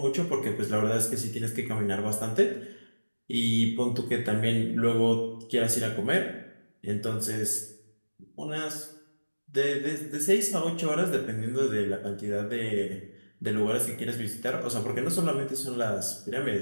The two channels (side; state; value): both; inverted; correlation -1.00